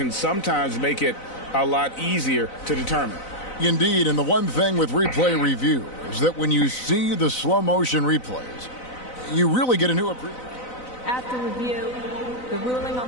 sometimes make it a lot easier to determine. Indeed, and the one thing with replay review is that when you see the slow motion replays, you really get a new appreciation. After review, the ruling on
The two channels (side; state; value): right; late; 4.0 ms